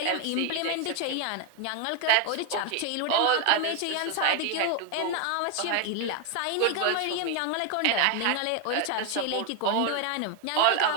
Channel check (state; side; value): different; both; correlation 0.01